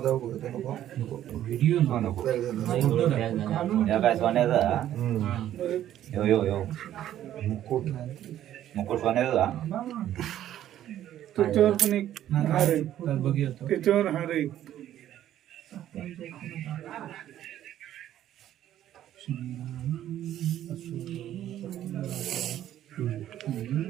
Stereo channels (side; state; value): left; quieter; 11.9 dB